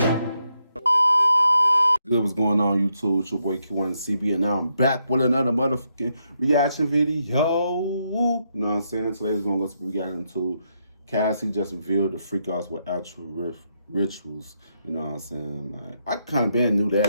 Good, what's going on YouTube? It's your boy Kewonis CB, and now I'm back with another motherfucking reaction video. You know what I'm saying? Today's gonna go to reaction to Cassie just revealed the Freakoffs with actual rituals. You know what I'm saying? Like, I kind of been knew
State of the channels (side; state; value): both; inverted; correlation -0.80